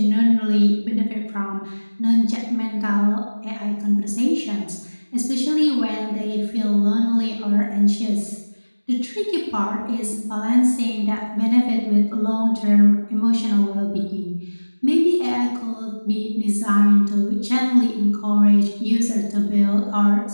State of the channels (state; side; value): inverted; both; correlation -1.00